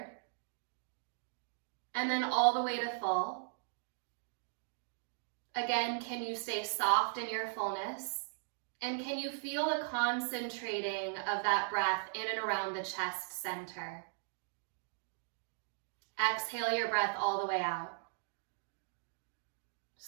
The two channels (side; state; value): left; silent; digital silence